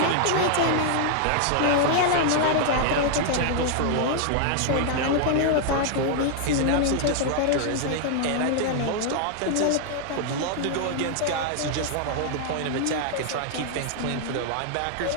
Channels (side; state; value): both; different; correlation 0.00